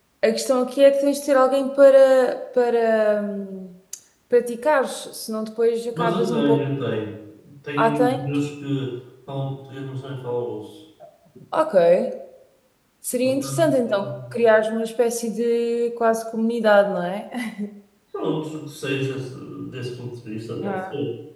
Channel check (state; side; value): identical; both; correlation 1.00